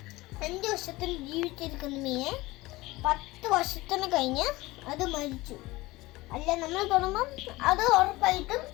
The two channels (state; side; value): quieter; right; 20.2 dB